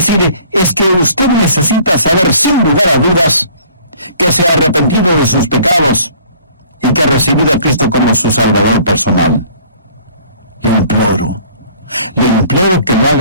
es que usted necesita saber sin lugar a dudas que se ha arrepentido de sus pecados y que ha recibido a Cristo como su Salvador personal. Le imploro que lo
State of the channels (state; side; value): inverted; both; correlation -0.54